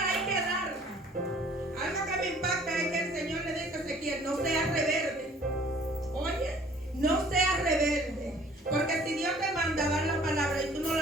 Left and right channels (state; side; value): normal; both; correlation 0.54